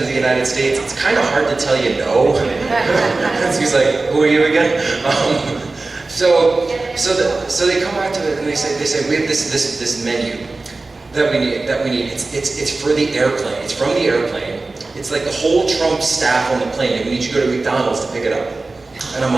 of the United States, it's kind of hard to tell you no. So he's like, who are you again? So they come back to it and they say we have this menu that we need. It's for the airplane. It's from the airplane. It's like the whole Trump staff on the plane. And we need you to go to McDonald's to pick it up. And I'm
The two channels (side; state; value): left; quieter; 3.4 dB